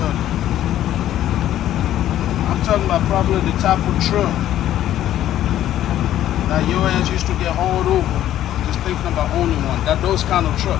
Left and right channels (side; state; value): right; quieter; 12.3 dB